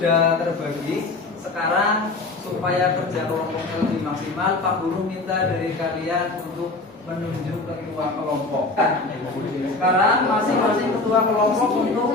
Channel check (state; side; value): quieter; right; 3.3 dB